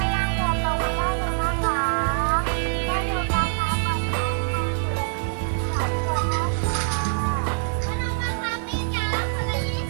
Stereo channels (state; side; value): silent; left; digital silence